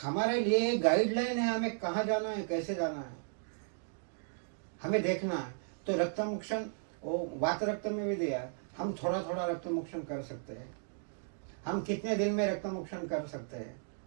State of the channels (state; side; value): silent; left; digital silence